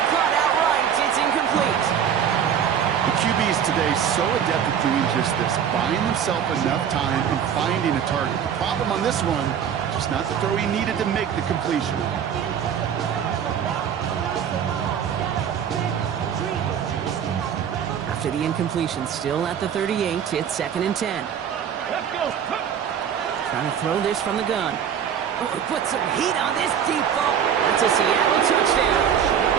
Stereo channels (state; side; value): quieter; left; 8.4 dB